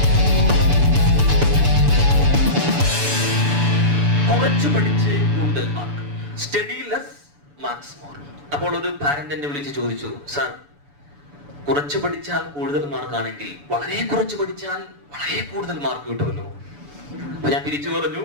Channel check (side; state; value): left; late; 7.0 ms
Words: കുറച്ച് പഠിച്ച് കൂടുതൽ mark, study less marks more. അപ്പോൾ ഒരു പാരന്റ് എന്നെ വിളിച്ച് ചോദിച്ചു, സാർ കുറച്ച് പഠിച്ചാൽ കൂടുതൽ മാർക്കാണെങ്കിൽ വളരെ കുറച്ച് പഠിച്ചാൽ വളരെ കൂടുതൽ മാർക്ക് കിട്ടുമല്ലോ? അപ്പൊ ഞാൻ തിരിച്ചു പറഞ്ഞു,